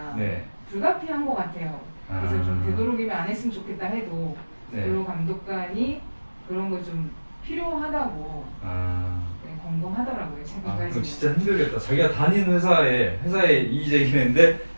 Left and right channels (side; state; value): both; inverted; correlation -1.00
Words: 네. 불가피한 것 같아요. 그래서 좀 아. 되도록이면 안 했으면 좋겠다 해도 네. 근로감독관이 그런 거 좀 필요하다고 아. 권고하더라고요. 아, 최근까지. 그럼 진짜 힘들겠다. 자기가 다니는 회사에 이의 제기했는데